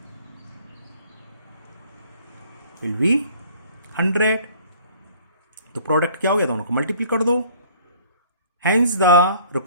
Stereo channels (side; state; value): both; inverted; correlation -0.54